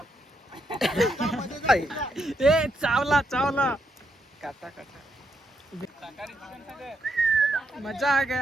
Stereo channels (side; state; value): both; normal; correlation 0.79